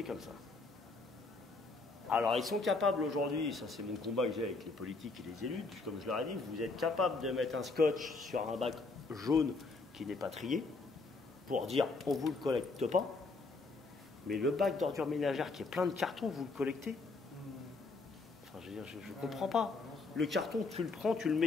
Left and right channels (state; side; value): quieter; right; 3.7 dB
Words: comme ça. Alors, ils sont capables aujourd'hui, ça c'est mon combat que j'ai avec les politiques et les élus, comme je leur ai dit, vous êtes capables de mettre un scotch sur un bac jaune qui n'est pas trié, pour dire on ne vous le collecte pas, mais le bac d'ordures ménagères qui est plein de cartons, vous le collectez. Enfin, je veux dire, je ne comprends pas. Le carton, tu le prends, tu le